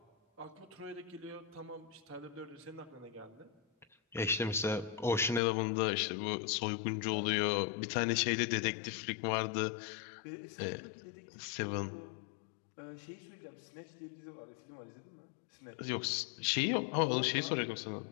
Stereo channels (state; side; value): drops out; right; at 5.4 s